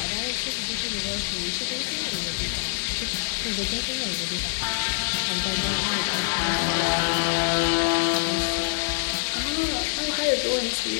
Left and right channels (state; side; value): silent; right; digital silence